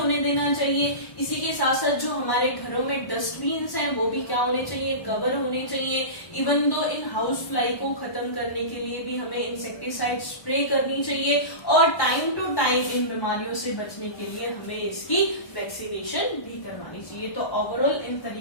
देना चाहिए. इसी के साथ साथ जो हमारे घरों में डस्टबिन्स हैं वो भी क्या होने चाहिए, कवर होने चाहिए. Even though in house fly को खत्म करने के लिए भी हमें इंसेक्टिसाइड स्प्रे करनी चाहिए और टाइम टू टाइम इन बीमारियों से बचने के लिए हमें इसकी वैक्सीनेशन भी करवानी चाहिए. तो ओवरऑल इन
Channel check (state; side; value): late; right; 1.1 ms